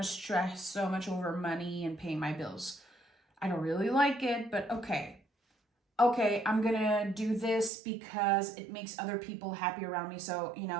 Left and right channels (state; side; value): drops out; left; at 7.7 s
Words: stress so much over money and paying my bills. I don't really like it, but okay. okay, I'm gonna do this because it makes other people happy around me. So,